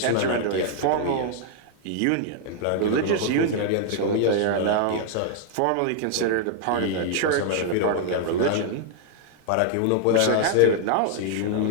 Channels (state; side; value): different; both; correlation 0.00